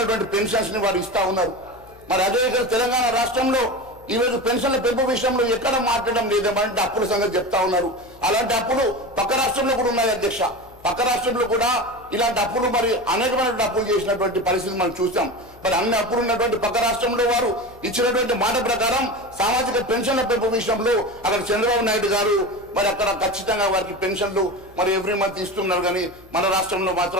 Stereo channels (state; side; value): noise; left; hum, 25 dB below the sound